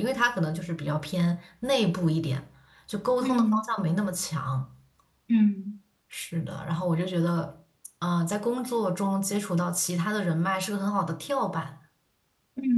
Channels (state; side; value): identical; both; correlation 1.00